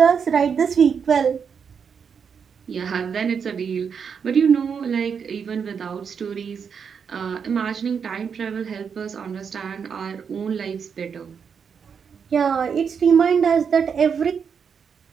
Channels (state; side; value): quieter; left; 6.6 dB